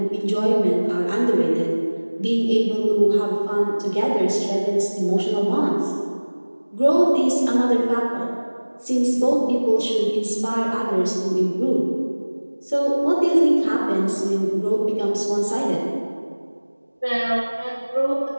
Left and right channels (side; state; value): both; inverted; correlation -1.00